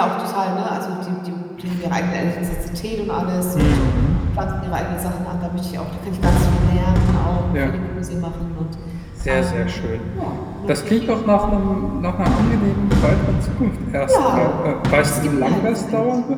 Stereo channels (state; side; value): identical; both; correlation 1.00